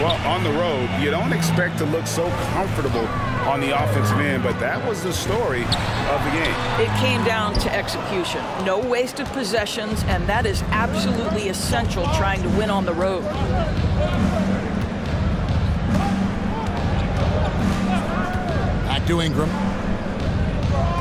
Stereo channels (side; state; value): both; identical; correlation 1.00